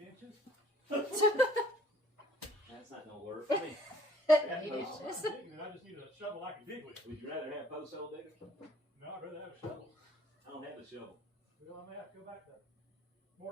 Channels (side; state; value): both; normal; correlation 0.57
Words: inches. That's not gonna work for me. 8 inches. I just need a shovel I can dig with. Would you rather have post hole digger? No, I'd rather have a shovel. I don't have a shovel. Well, I may have to go back there.